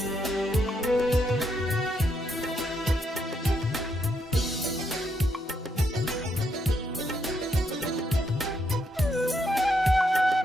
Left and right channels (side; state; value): both; normal; correlation 0.77